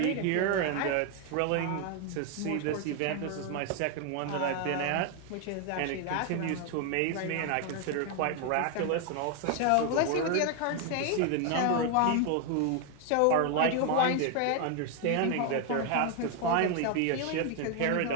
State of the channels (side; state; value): both; different; correlation 0.01